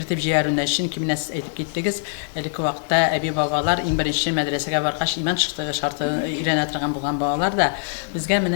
җибәрүне. Чөнки менә сез әйтеп киттегез, әлеге вакытта әби бабалар иң беренче мәдрәсәгә баргач иман шартын өйрәнә торган булган балалар да безгә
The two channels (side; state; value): right; silent; digital silence